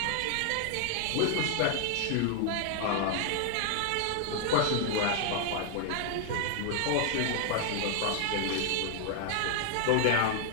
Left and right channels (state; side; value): different; both; correlation 0.00